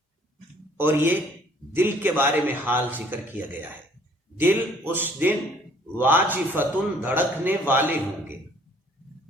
اور یہ دل کے بارے میں حال ذکر کیا گیا ہے. دل اس دن واجفتن دھڑکنے والے ہوں گے.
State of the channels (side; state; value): both; normal; correlation 0.59